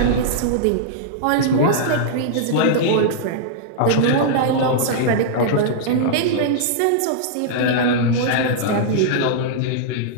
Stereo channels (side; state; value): both; different; correlation -0.02